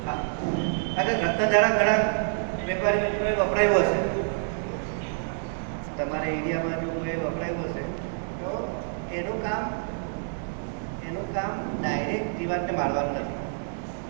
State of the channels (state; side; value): silent; left; digital silence